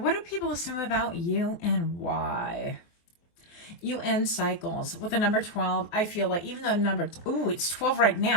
do people assume about you and why? You end cycles. With the number 12, I feel like even though it's 12 right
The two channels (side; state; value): right; late; 23 ms